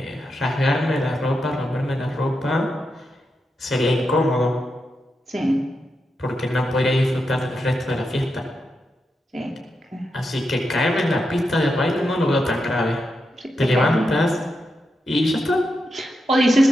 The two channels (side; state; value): both; normal; correlation 0.86